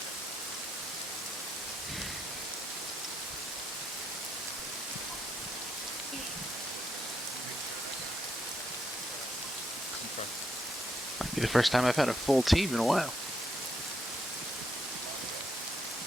Might be the first time I've had a full team in a while.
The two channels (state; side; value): normal; both; correlation 0.79